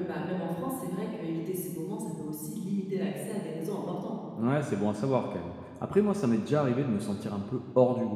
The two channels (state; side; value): identical; both; correlation 1.00